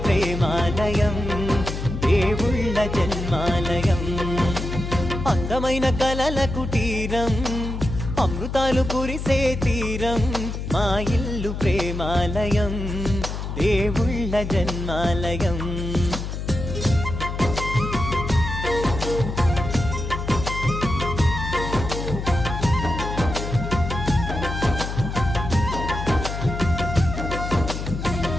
ప్రేమాలయం, దేవుళ్ళ జన్మాలయం. అందమైన కలల కుటీరం, అమృతాలు కురిసే తీరం, మా ఇల్లు ప్రేమాలయం, దేవుళ్ళ జన్మాలయం.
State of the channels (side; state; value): left; noise; hum, 5 dB below the sound